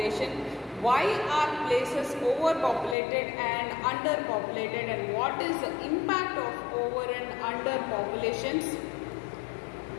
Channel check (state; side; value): drops out; right; at 3.0 s